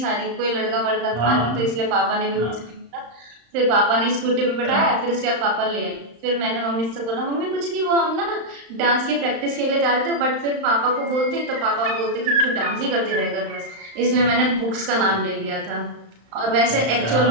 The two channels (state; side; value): late; left; 35 ms